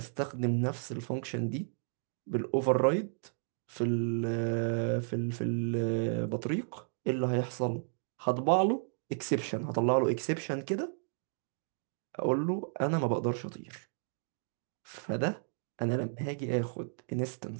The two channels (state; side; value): silent; left; digital silence